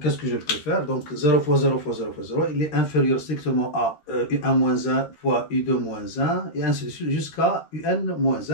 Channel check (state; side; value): late; right; 13 ms